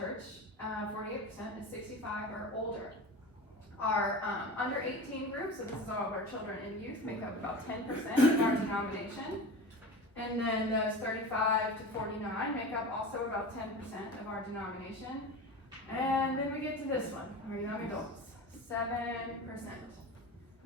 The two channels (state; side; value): normal; both; correlation 0.30